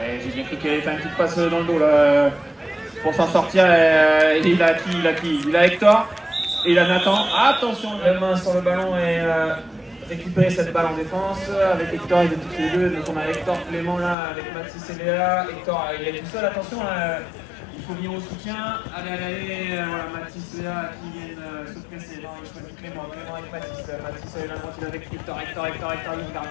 j'ai bien cru qu'il allait faire une petite passe dans le dos là, pour s'en sortir. Il a qui? Il a Hector et il a Nathan. Attention, la main sur le ballon et récupérer cette balle en défense. Avec Hector, ils étaient tous les deux. Donc on a Hector, Clément là, avec Mathis et Léa. Hector, il est tout seul, attention. Il faut venir au soutien. Allez, voilà, Mathis et Léa qui viennent se presser. Non, il choisit Clément avec Mathis. Mathis est là, il est avec Hector, il garde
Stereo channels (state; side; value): drops out; right; at 14.2 s